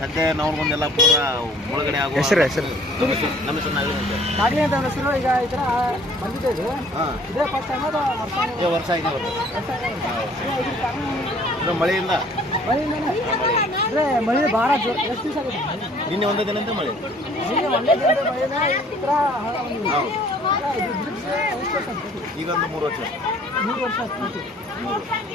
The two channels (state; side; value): normal; both; correlation 0.55